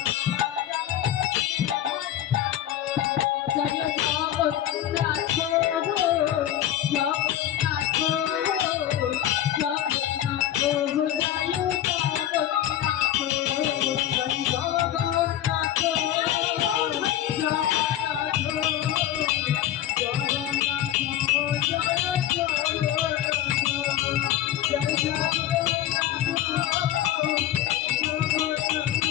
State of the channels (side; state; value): right; quieter; 11.8 dB